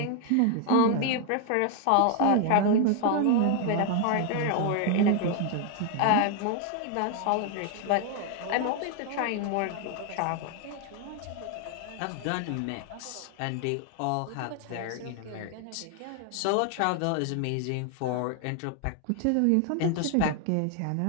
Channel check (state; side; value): different; both; correlation 0.00